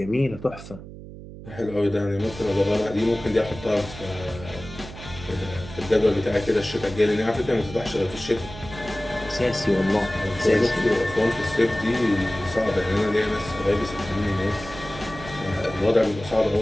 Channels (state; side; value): noise; right; hum, 14 dB below the sound